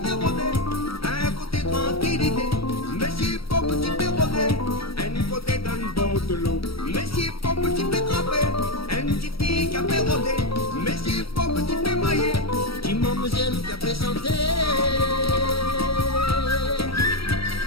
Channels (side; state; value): right; late; 0.75 ms